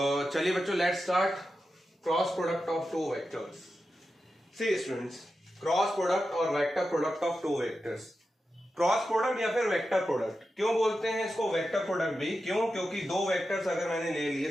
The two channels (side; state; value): both; normal; correlation 0.91